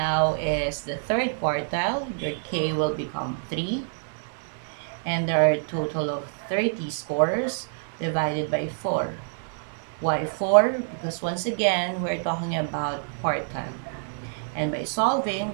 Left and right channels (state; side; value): silent; left; digital silence